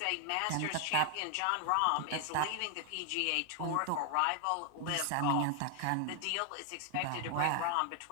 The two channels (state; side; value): different; both; correlation 0.00